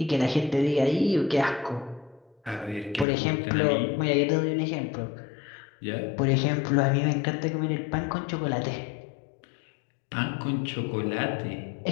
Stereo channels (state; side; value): drops out; right; at 3.1 s